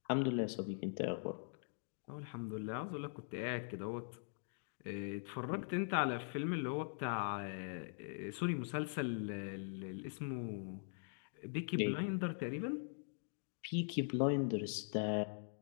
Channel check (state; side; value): silent; right; digital silence